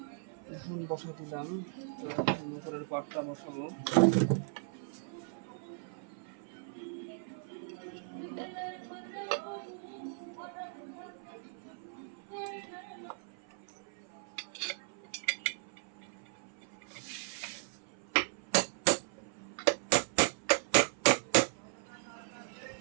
এখন বসা দিলাম, তো এখন উপরের পাটটা বসাবো।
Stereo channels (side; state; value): left; silent; 53 dB below the other